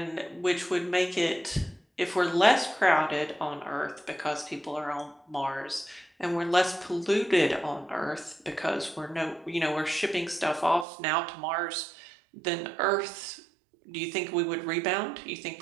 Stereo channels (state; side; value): drops out; left; at 10.9 s